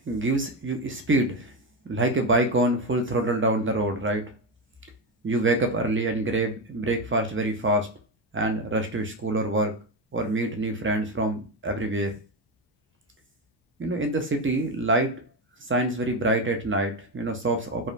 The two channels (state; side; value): normal; both; correlation 0.13